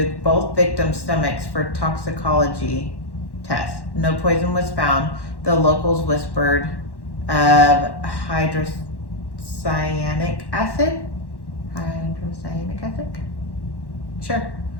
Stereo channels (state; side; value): late; right; 1.1 ms